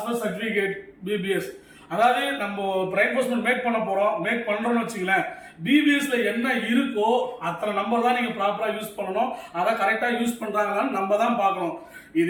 per certificate BBS. அதாவது நம்ம ரெயின்ஃபோர்ஸ்மெண்ட் மேக் பண்றோம்னு வச்சுங்களேன், பிபிஎஸ்ல என்ன இருக்கோ அத்தனை நம்பர் தான் நீங்க ப்ராப்பரா யூஸ் பண்ணணும். அதை கரெக்டா யூஸ் பண்றாங்களான்னு நம்ம தான் பார்க்கணும்.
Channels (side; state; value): both; identical; correlation 1.00